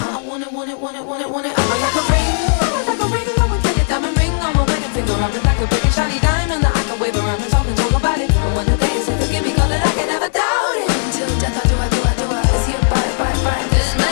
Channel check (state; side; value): silent; right; digital silence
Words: I want it. I'm like a ring. I'm like a diamond ring on my wedding finger. I'm like a big shiny diamond that I can wave around and talk about it. And when the day is here, forgive me, call it, I can never doubt it. Until death, I do. Is he a bite? This